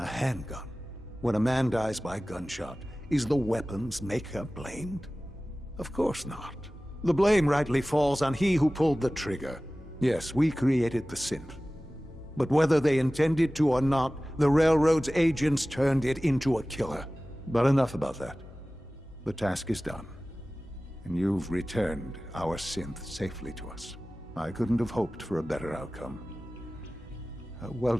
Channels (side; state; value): both; normal; correlation 0.97